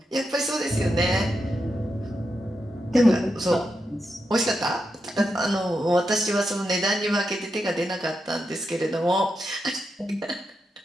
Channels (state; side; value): normal; both; correlation 0.86